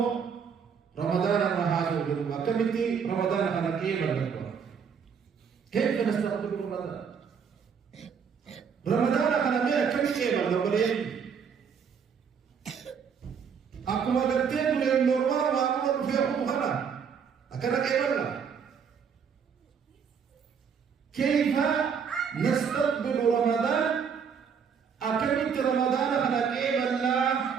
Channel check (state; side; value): quieter; left; 6.7 dB